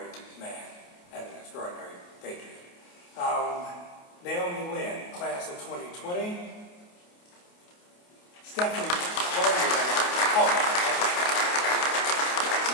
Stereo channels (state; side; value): late; right; 28 ms